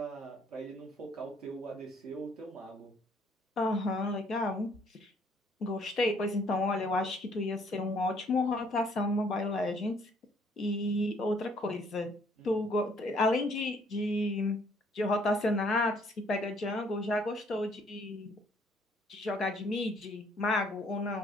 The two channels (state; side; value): normal; both; correlation 0.63